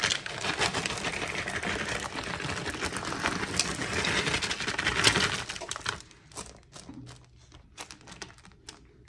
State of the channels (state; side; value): identical; both; correlation 1.00